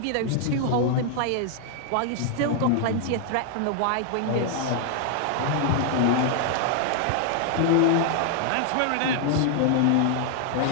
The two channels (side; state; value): both; different; correlation 0.00